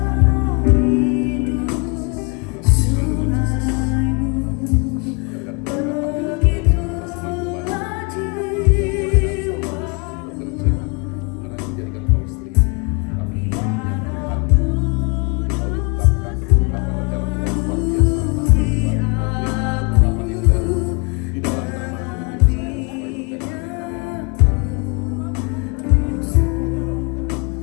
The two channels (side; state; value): right; quieter; 32.6 dB